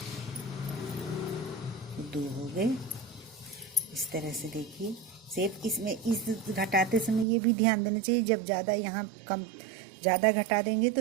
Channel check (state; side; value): drops out; left; at 7.2 s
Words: 2 हो गए। इस तरह से देखिए शेप। इसमें इस घटाते समय ये भी ध्यान देना चाहिए, जब ज़्यादा यहाँ ज़्यादा घटा देंगे तो